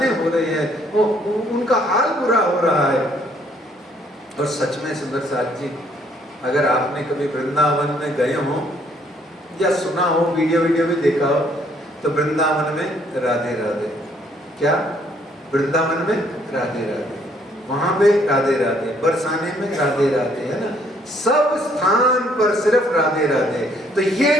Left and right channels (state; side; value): normal; both; correlation 0.66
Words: हो रहे हैं, वो उनका हाल बुरा हो रहा है। और सच में सुंदर साथ जी, अगर आपने कभी वृंदावन में गए हो या सुना हो, वीडियो भी देखा हो, तो वृंदावन में राधे राधे, क्या वृंदावन में राधे राधे, वहां पे राधे राधे, बरसाने में राधे राधे, है ना, सब स्थान पर सिर्फ राधे राधे। तो ये